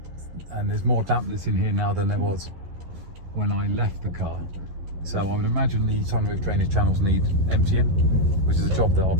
there's more dampness in here now than there was when I left the car. So I would imagine the sunroof drainage channels need emptying, which is a job that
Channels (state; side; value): late; left; 11 ms